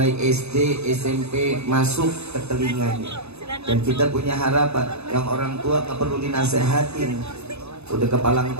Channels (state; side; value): late; left; 0.80 ms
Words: SD, SMP masuk ke telinganya. Dan kita punya harapan, yang orang tua gak perlu dinasehatin, udah kepalang